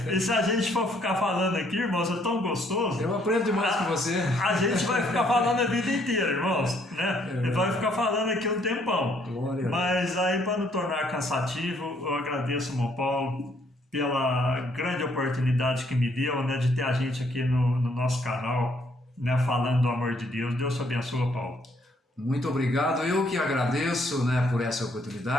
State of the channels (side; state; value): both; normal; correlation 0.67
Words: E se a gente for ficar falando aqui, irmãos, é tão gostoso. Eu aprendo demais com você. A gente vai ficar falando a vida inteira, irmãos, né? Vai ficar falando aqui um tempão. Glória. Mas aí, para não tornar cansativo, eu agradeço, irmão Paulo, pela grande oportunidade que me deu, né, de ter a gente aqui no nosso canal, né, falando do amor de Deus. Deus te abençoe, Paulo. Muito obrigado, eu que agradeço, né, por essa